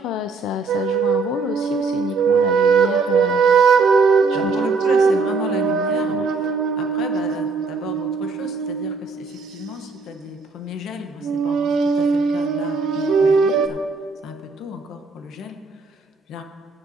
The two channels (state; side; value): quieter; left; 4.3 dB